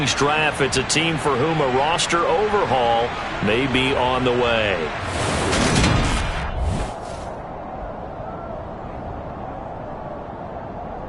draft, it's a team for whom a roster overhaul may be on the way.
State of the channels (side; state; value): both; identical; correlation 1.00